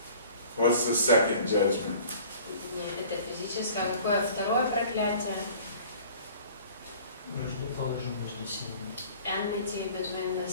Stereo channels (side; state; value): both; inverted; correlation -0.48